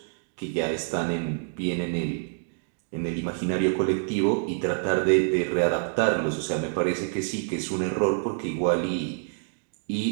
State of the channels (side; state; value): left; silent; digital silence